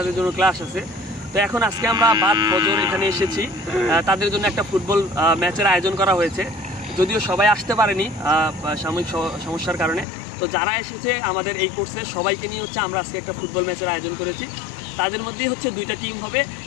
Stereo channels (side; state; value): right; drops out; at 10.1 s